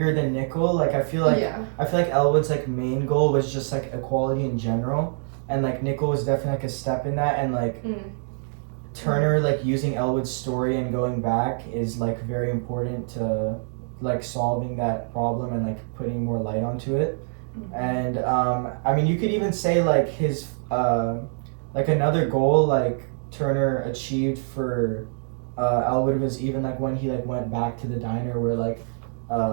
than Nickel. Like I feel like Elwood's like main goal was just like equality in general, and like Nickel was definitely like a step in that, and like Turner like using Elwood's story and going back is like very important to like solving that problem and like putting more light onto it. And I mean you could even say like his like another goal like Turner achieved for Elwood was even like when he like went back to the diner where like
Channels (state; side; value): silent; left; digital silence